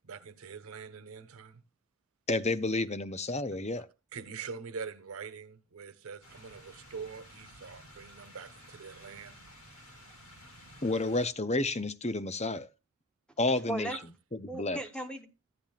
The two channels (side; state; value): both; normal; correlation 0.32